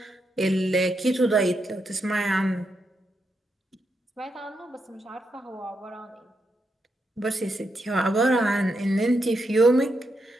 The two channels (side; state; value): both; normal; correlation 0.82